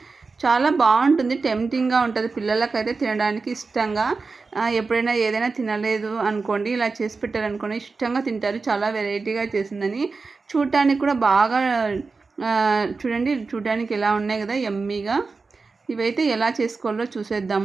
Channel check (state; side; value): quieter; left; 4.2 dB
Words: చాలా బాగుంటుంది, టెంప్టింగ్గా ఉంటుంది. పిల్లలకైతే తినడానికి ఇష్టంగా, ఎప్పుడైనా ఏదైనా తినలేదు అనుకోండి, ఇలా చేసి పెట్టారనుకోండి ఇష్టంగా తింటారు. చాలా వెరైటీగా చేసిందని. చూడటానికి కూడా బాగా చూడండి, చూడడానికి ఎలా ఉన్నాయి కదా, యమ్మీగా. ఇవైతే ఎలా చేసుకోవాలో